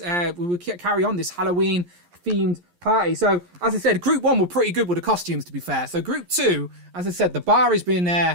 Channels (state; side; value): late; left; 11 ms